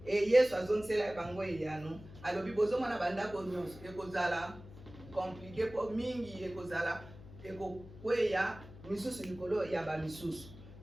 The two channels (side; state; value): left; noise; hum, 17 dB below the sound